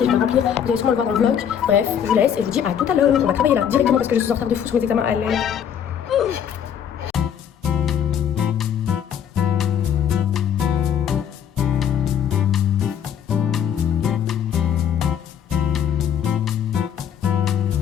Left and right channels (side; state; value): right; quieter; 8.7 dB